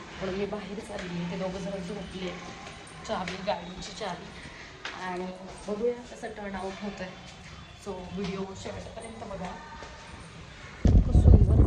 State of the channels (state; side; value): identical; both; correlation 1.00